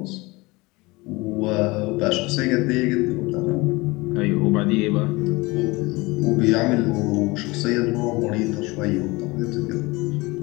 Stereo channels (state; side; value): quieter; right; 23.3 dB